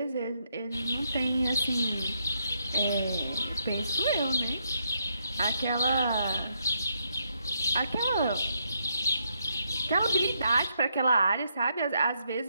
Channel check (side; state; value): both; inverted; correlation -0.77